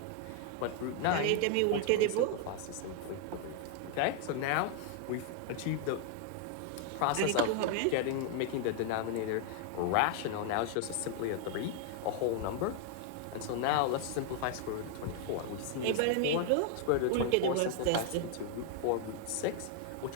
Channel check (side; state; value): both; different; correlation 0.00